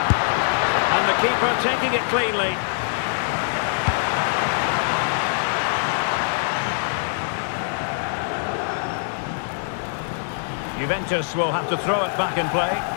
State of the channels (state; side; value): silent; right; digital silence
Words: And the keeper taking it cleanly. Juventus will have to throw it back in play.